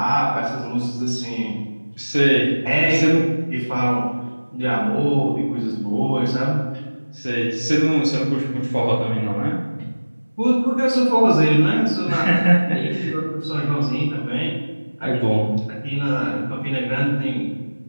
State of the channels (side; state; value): both; inverted; correlation -1.00